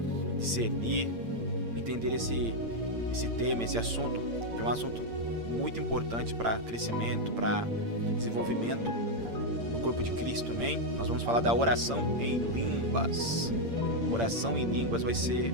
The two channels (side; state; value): left; late; 8.7 ms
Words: discernir, entender esse tema, esse assunto, que é um assunto muito importante para crescimento, para desenvolvimento do corpo de Cristo, amém? Nós vamos falar da oração em línguas. Oração em línguas vai ser